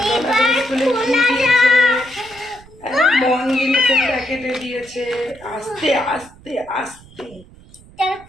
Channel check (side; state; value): right; noise; rumble, 23 dB below the sound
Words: স্কুলে কি দিয়েছে? মঙ্গিলের প্যাকেটে দিয়েছে। আস্তে আস্তে আস্তে।